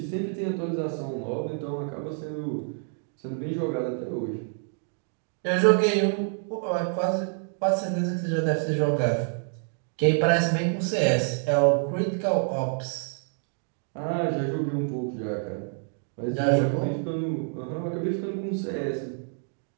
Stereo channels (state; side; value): silent; left; 55 dB below the other